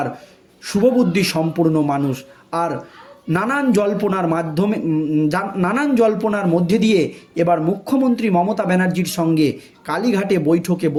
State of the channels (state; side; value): identical; both; correlation 1.00